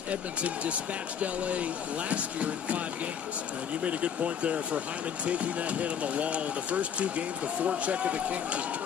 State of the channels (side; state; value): right; quieter; 7.9 dB